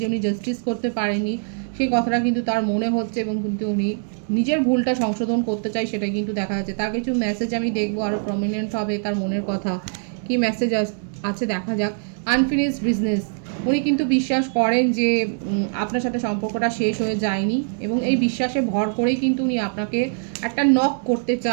উনি জাস্টিস করতে পারেনি সেই কথাটা কিন্তু তার মনে হচ্ছে এবং কিন্তু উনি নিজের ভুলটা সংশোধন করতে চাই, সেটাই কিন্তু দেখা যাচ্ছে। তার কিছু মেসেজ আমি দেখবো আরও প্রমিনেন্ট হবে, তার মনের কথা কি মেসেজ আছে দেখা যাক। আনফিনিশড বিজনেস, উনি কিন্তু বিশ্বাস করেন যে আপনার সাথে সম্পর্কটা শেষ হয়ে যায়নি এবং এই বিশ্বাসে ভর করেই কিন্তু উনি আপনাকে একটা নক করতে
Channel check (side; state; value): left; silent; digital silence